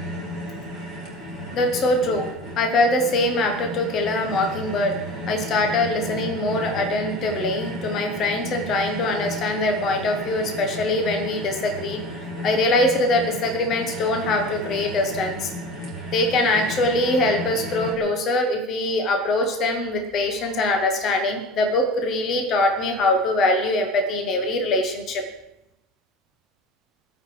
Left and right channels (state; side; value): normal; both; correlation 0.34